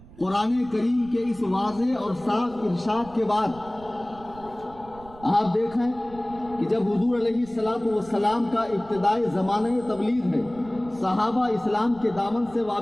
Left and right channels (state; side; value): noise; right; rumble, 20 dB below the sound